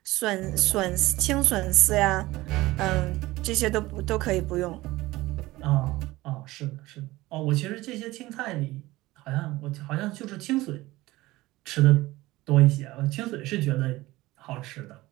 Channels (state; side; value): quieter; left; 18.8 dB